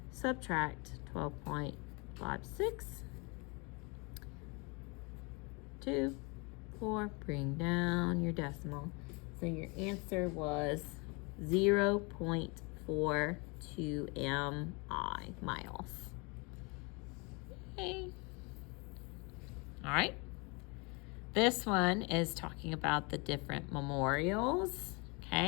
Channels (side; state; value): right; quieter; 29.8 dB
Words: subtract 12.56. 2, 4, bring down your decimal. So your answer was 0.42 mi, miles. Okay. All right. This one is talking about the different memorials.